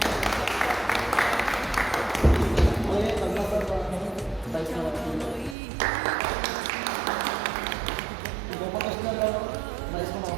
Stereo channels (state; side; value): drops out; left; at 5.6 s